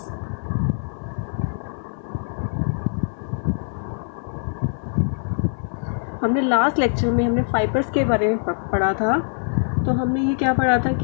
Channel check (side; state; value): right; silent; digital silence